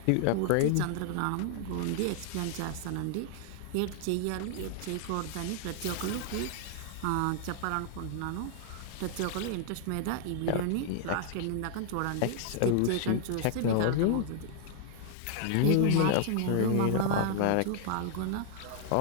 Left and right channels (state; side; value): different; both; correlation 0.00